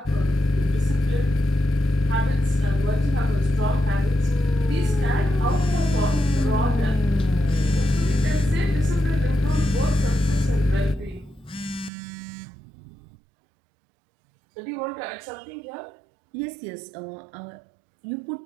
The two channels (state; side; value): drops out; left; at 11.9 s